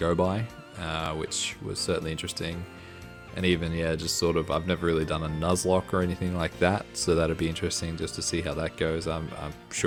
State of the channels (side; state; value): both; identical; correlation 1.00